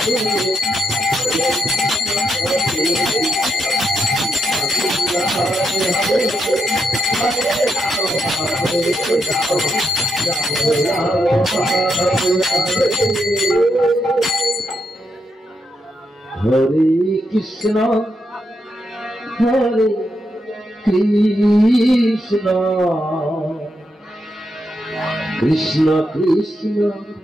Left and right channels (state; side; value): normal; both; correlation 0.82